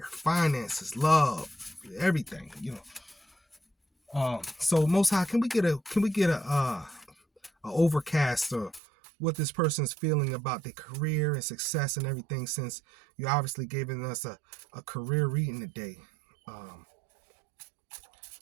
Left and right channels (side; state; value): left; drops out; at 8.8 s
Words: finances, love, everything, So Most High, can we get a overcast of what this person's feeling about their career and success and everything, since you obviously giving us a career reading today. And